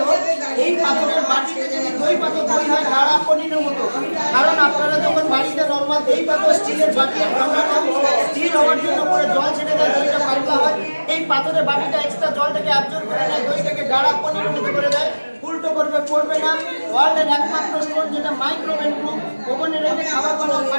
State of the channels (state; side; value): inverted; both; correlation -1.00